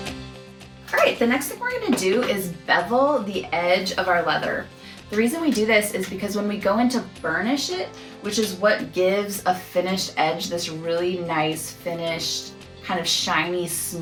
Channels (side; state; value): both; identical; correlation 1.00